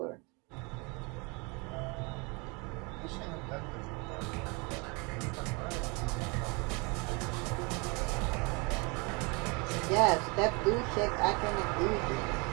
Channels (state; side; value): quieter; left; 29.7 dB